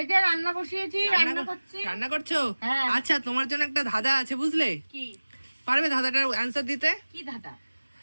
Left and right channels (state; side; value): inverted; both; correlation -1.00